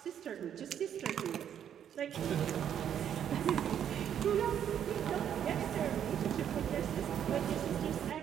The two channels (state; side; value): quieter; left; 9.3 dB